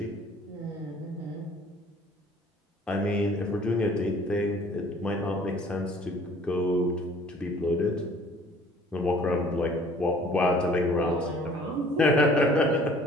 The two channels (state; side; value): normal; both; correlation 0.53